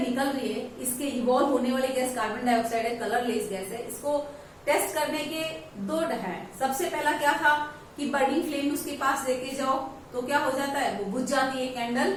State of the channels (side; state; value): both; identical; correlation 1.00